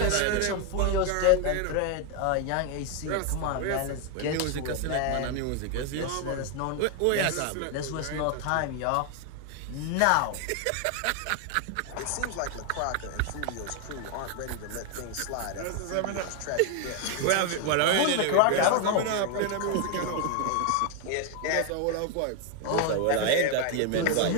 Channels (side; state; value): both; different; correlation 0.01